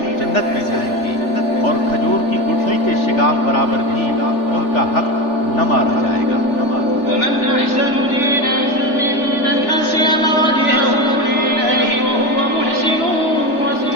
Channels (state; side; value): late; right; 3.4 ms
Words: جنت میں جائیں گے، اور کھجور کی گٹھلی کے شگاف برابر بھی ان کا حق نہ مارا جائے گا۔ ومن أحسن دينا ممن أسلم وجهه لله وهو محسن